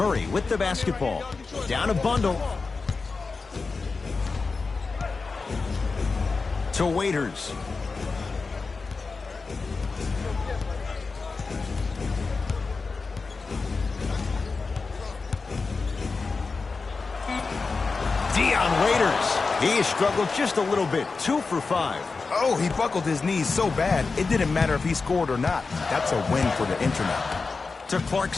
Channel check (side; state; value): right; quieter; 4.3 dB